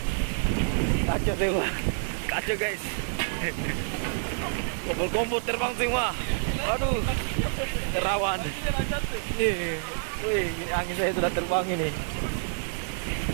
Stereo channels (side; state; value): left; silent; digital silence